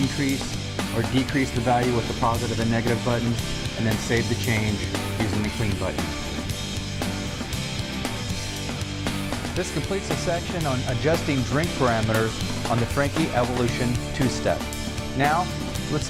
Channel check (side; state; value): both; identical; correlation 1.00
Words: or decrease the value with the positive and negative buttons, and then save the change using the clean button. This completes the section on adjusting drink parameters on the Franke Evolution 2-step. Now, let's